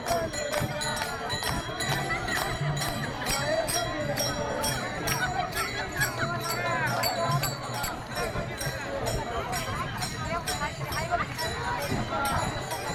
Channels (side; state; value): both; identical; correlation 1.00